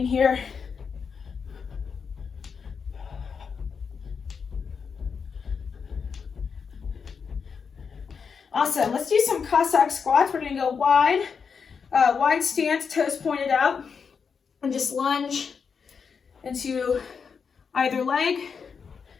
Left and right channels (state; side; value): quieter; right; 6.0 dB